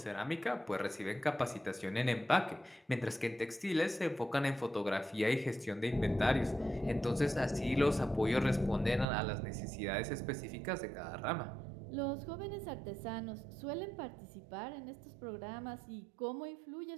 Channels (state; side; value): drops out; left; at 9.1 s